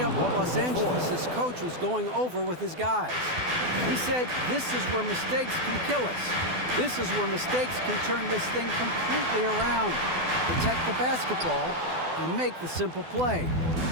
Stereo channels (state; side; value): late; left; 12 ms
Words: what Los Angeles' coach was going over with his guys. He said, this is where mistakes can kill us. This is where mistakes can turn this thing completely around. Protect the basketball and make the simple play.